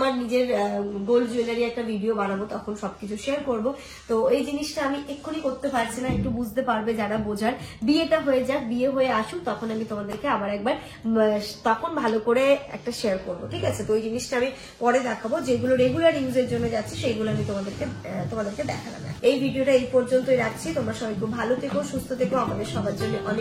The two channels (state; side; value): identical; both; correlation 1.00